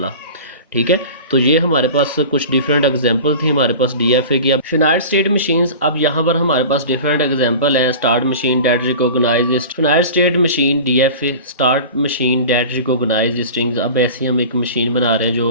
ठीक है, तो ये हमारे पास कुछ डिफरेंट एग्जांपल थी हमारे पास DFA की। अब फिनाइट स्टेट मशीन्स, अब यहाँ पर हमारे पास डिफरेंट एग्जांपल है। Start machine that recognise finite state machine DFA start machine that recognise strings. अब ऐसी हम एक मशीन बना रहे हैं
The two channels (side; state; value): both; inverted; correlation -0.36